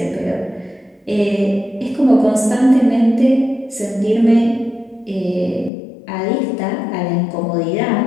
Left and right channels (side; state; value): right; drops out; at 5.7 s